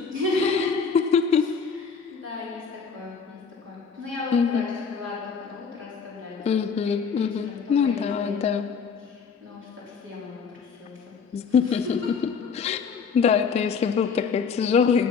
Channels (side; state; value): right; quieter; 5.9 dB